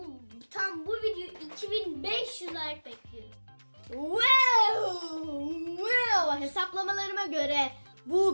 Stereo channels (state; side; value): inverted; both; correlation -1.00